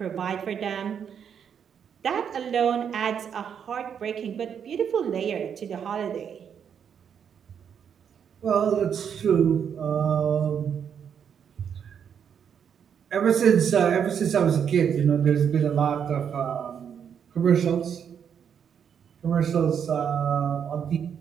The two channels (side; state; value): left; quieter; 7.8 dB